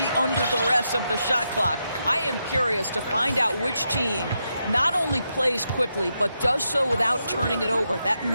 under duress of the shot clock. I am curious to find out which team not only plays quickly, but does so without turning it over. That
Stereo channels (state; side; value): inverted; both; correlation -0.84